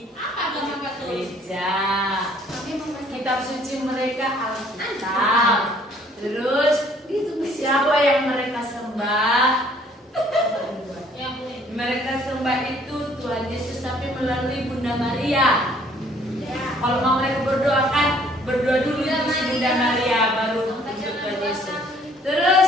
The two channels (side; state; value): both; normal; correlation 0.60